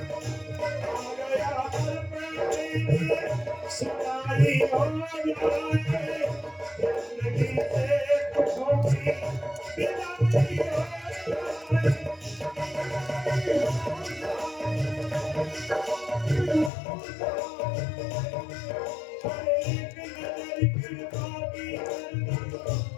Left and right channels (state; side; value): drops out; right; at 16.7 s